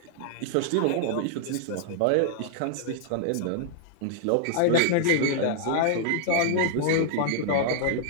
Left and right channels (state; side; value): different; both; correlation -0.01